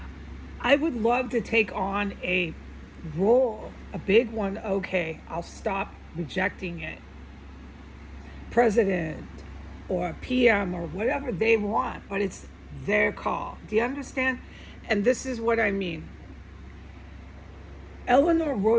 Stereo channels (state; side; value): identical; both; correlation 1.00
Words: I would love to take on a role, a big one, okay? I'll stop rejecting it. President or PM or whatever they want, but it's their call. Do you understand? And this is what I mean. Eleanor